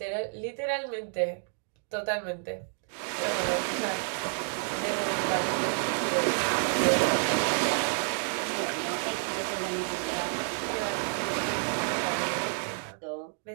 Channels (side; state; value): left; silent; 58 dB below the other